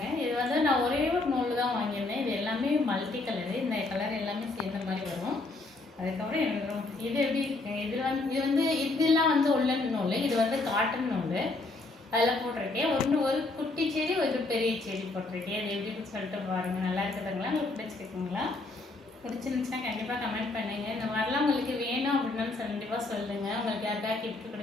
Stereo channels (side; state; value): right; quieter; 3.2 dB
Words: இது வந்து நான் ஒரே ஒரு நூல் தான் வாங்கியிருந்தேன். இது எல்லாமே மல்டி கலரு. இந்த கலர் எல்லாமே சேர்ந்த மாதிரி வரும். அதுக்கப்புறம் எனக்கு இது எப்படி இருக்குங்க, இதெல்லாம் வந்து உள்ளன் நூல், இது வந்து காட்டன் நூல். அதில் போட்டிருக்கேன். ஒரு குட்டி செடி, ஒரு பெரிய செடி போட்டிருக்கேன். அது எப்படின்னு சொல்லிட்டு பாருங்கள். நல்லா இருக்குதுங்களா? உங்களுக்கு பிடிச்சிருக்குங்களா? பிடிச்சிருந்துச்சுன்னா கண்டிப்பாக கமெண்ட் பண்ணுங்கள். இந்த மாதிரிலாம் உங்களுக்கு வேணும் அப்படின்னாலும் கண்டிப்பாக சொல்லுங்கள். உங்களுக்கு யாருக்காக கிஃப்ட்